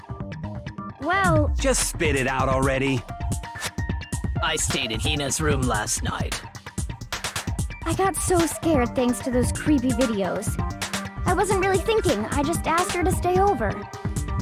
well... Just spit it out already. I stayed in Hina's room last night. I got so scared thanks to those creepy videos. I wasn't really thinking, I just asked her to stay over.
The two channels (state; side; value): identical; both; correlation 1.00